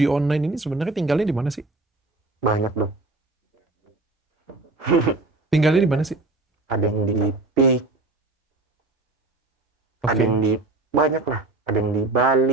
online ini sebenarnya tinggalnya di mana sih? Banyak dong. Tinggalnya di mana sih? Ada yang di PIK, ada yang di banyak lah, ada yang di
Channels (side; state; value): left; quieter; 3.2 dB